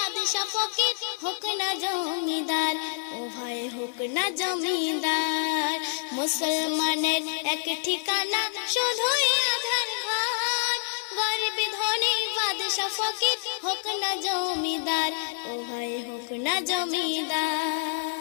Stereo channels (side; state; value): right; silent; digital silence